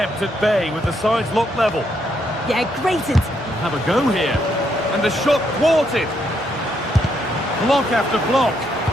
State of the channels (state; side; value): normal; both; correlation 0.76